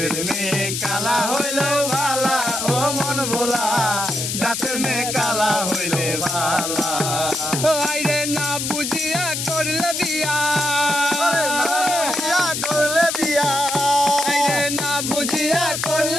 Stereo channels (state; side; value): noise; left; hiss, 3 dB below the sound